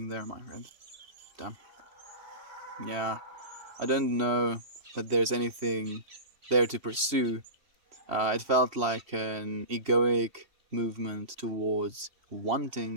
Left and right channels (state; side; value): late; left; 3.0 ms